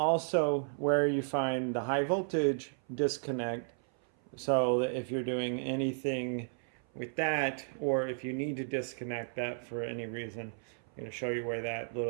where you find the high voltage disconnect, so that if you're doing anything with that, or if you need to disconnect that for any reason, I'm going to show you where that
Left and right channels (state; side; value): silent; left; 55 dB below the other